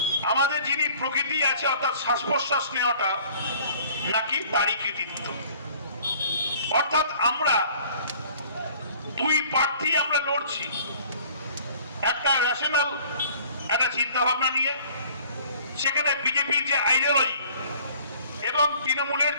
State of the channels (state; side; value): inverted; both; correlation -0.52